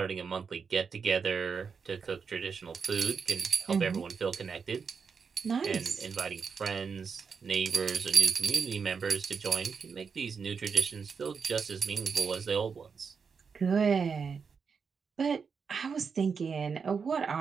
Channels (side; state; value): left; quieter; 5.8 dB